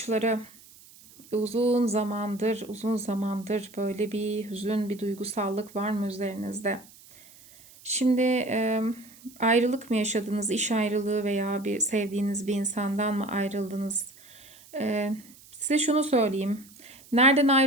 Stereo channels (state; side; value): noise; right; hiss, 23 dB below the sound